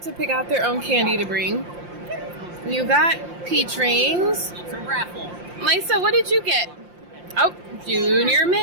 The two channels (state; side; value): late; left; 5.7 ms